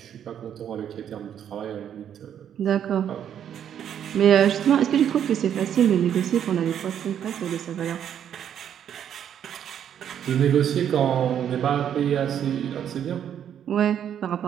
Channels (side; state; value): left; quieter; 9.3 dB